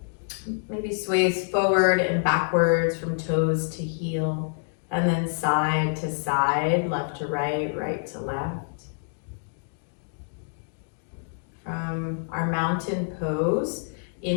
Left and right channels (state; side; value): silent; right; digital silence